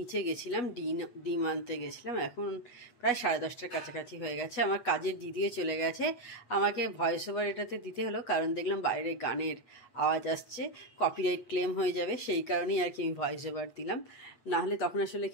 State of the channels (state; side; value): late; right; 8.2 ms